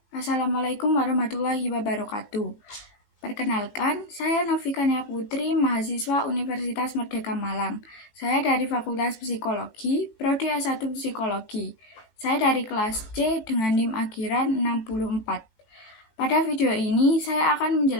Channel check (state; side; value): late; right; 18 ms